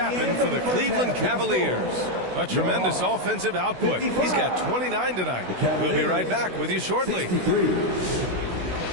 for the Cleveland Cavaliers. A tremendous offensive output. He's got 29 tonight. We'll be right back with you shortly.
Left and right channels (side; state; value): left; late; 16 ms